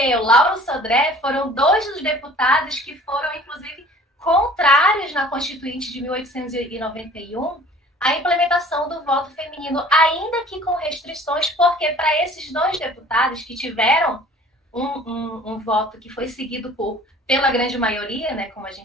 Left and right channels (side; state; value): both; normal; correlation 0.48